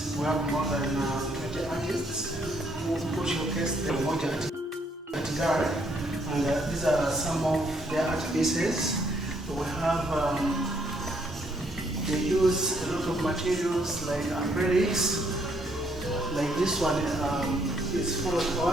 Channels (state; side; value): normal; both; correlation 0.69